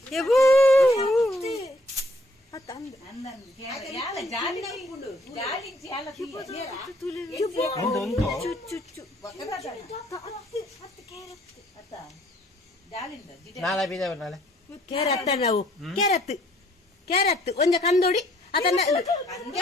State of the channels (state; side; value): normal; both; correlation 0.63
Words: ಕ್ಯಾರೆಟ್ ನಾವು ಕ್ಯಾರೆಟ್ ಒಂದ ಕಂದೋಡಿ ಅದನ್ನ